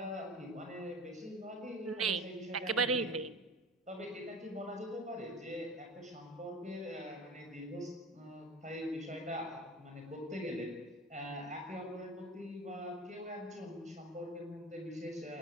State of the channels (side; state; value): both; normal; correlation 0.34